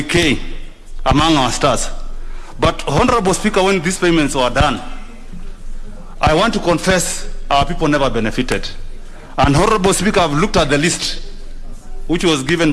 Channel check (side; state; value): both; identical; correlation 1.00